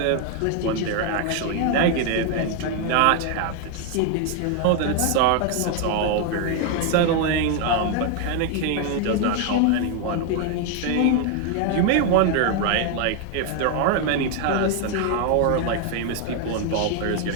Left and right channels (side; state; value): both; different; correlation 0.01